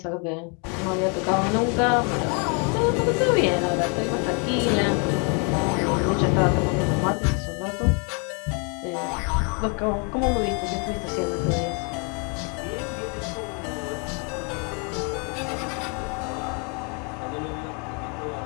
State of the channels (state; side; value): quieter; right; 36.1 dB